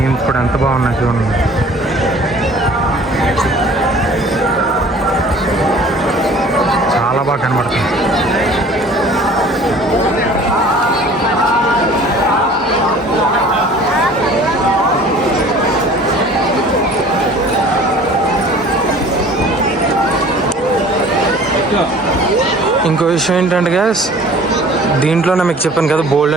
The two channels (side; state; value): both; normal; correlation 0.48